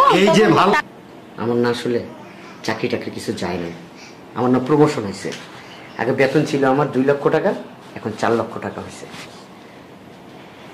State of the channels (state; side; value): identical; both; correlation 1.00